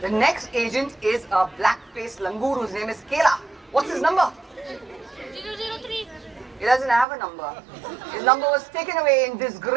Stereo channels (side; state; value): left; drops out; at 7.1 s